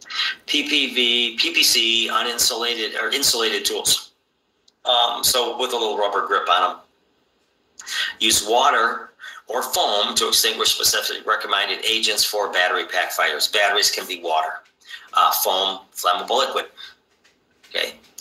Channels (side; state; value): both; identical; correlation 1.00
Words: PPV, PPC, uninsulated or insulated tools. so with a little rubber grip on them. Use water or foam to extinguish specifically recommended agents for battery pack fires. Batteries can be water. Foam, flammable liquid. Okay.